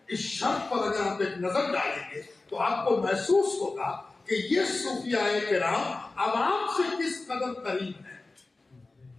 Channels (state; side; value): quieter; right; 3.4 dB